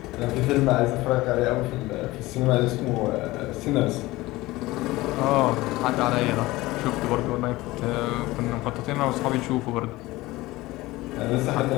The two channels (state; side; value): quieter; right; 19.3 dB